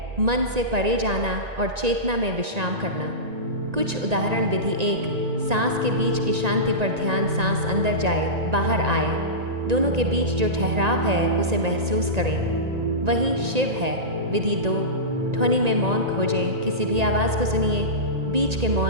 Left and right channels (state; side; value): late; left; 1.9 ms